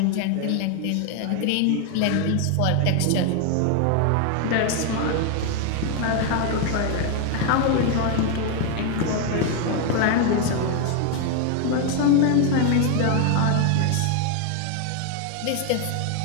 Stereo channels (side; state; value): both; different; correlation 0.01